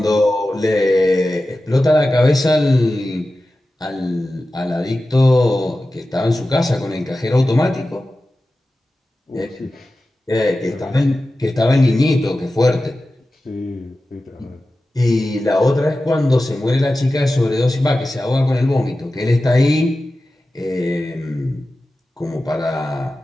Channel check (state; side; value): normal; both; correlation 0.94